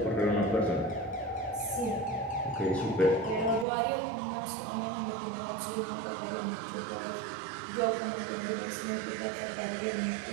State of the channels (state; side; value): drops out; left; at 3.7 s